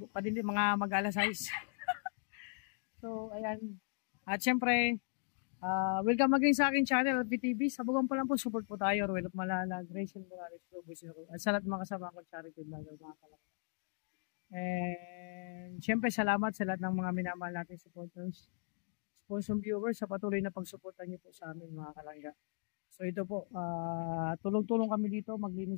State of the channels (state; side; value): silent; right; 53 dB below the other